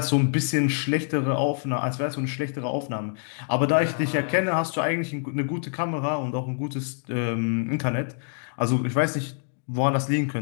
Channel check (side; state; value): right; silent; 61 dB below the other